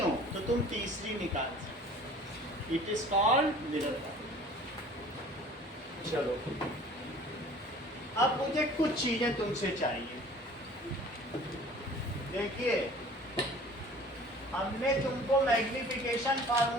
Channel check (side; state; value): both; normal; correlation 0.47